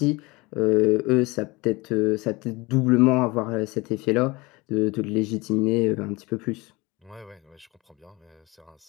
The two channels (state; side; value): quieter; right; 23.8 dB